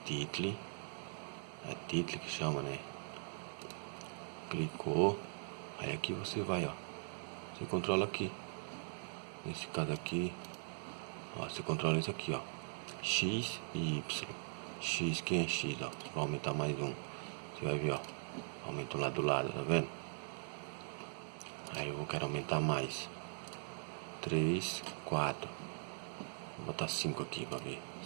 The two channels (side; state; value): left; silent; digital silence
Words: título. É título que chama, né? Clicou. Aí aqui você vai, ó. Você controla aqui. Nesse caso aqui, ó, você controla isso aqui, ó. X e Y. X, quem é X, ó. Você vai aumentar mais um. Você vai ver, ó. Aumenta lá do lado, tá vendo? Aí eu quero aumentar mais. 3, 4. Vou botar 5 aqui pra ver.